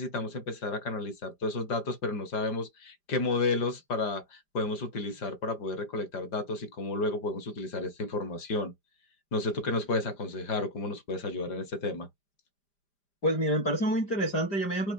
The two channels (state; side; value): late; right; 5.0 ms